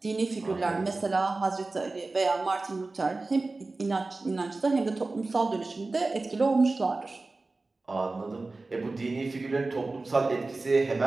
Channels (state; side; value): quieter; left; 3.4 dB